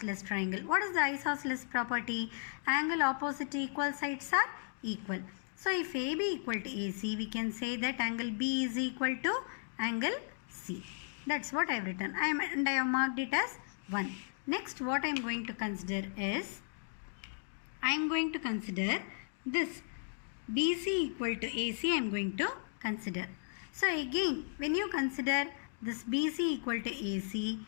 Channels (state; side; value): silent; right; digital silence